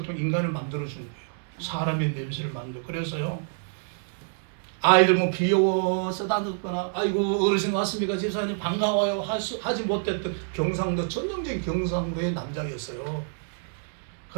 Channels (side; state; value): left; silent; 60 dB below the other